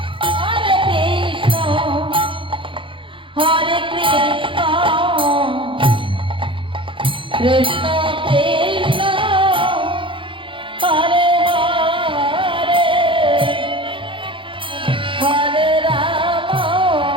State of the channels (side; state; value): left; late; 0.25 ms